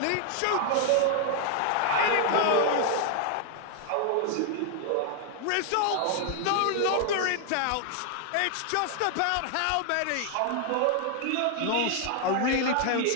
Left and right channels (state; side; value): different; both; correlation 0.00